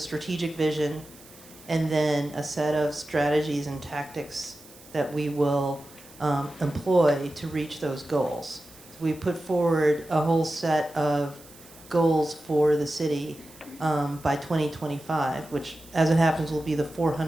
vision and then a set of strategies and tactics that we will employ to reach those goals. So we put forward a whole set of goals for the city by 2025, which, as it happens, will be the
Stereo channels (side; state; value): right; noise; hiss, 22 dB below the sound